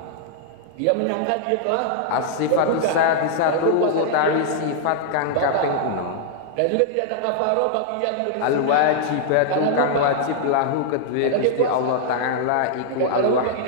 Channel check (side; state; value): both; different; correlation -0.01